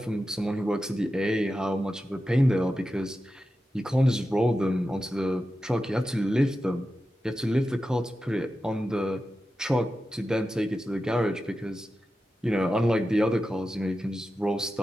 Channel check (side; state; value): both; normal; correlation 0.91